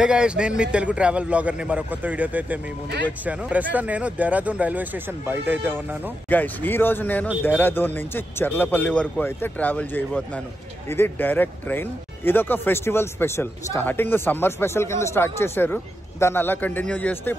guys, నేను మీ Telugu travel blogger ని మరో కొత్త వీడియోతో అయితే మీ ముందుకు వచ్చాను. ప్రస్తుతం నేను దేహరాదూన్ రైల్వే స్టేషన్ బయట అయితే ఉన్నాను. గైస్, ఈ రోజు నేను దేహరాదూన్ నుంచి చర్లపల్లి వరకు అయితే ట్రావెల్ చేయబోతున్నాను. ఇది డైరెక్ట్ ట్రైన్. ఇదొక festival special. Starting summer special కింద స్టార్ట్ చేశారు, దాన్ని అలా కంటిన్యూ చేస్తే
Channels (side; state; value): both; normal; correlation 0.86